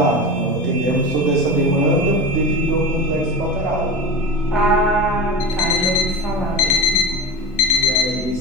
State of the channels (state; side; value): normal; both; correlation 0.27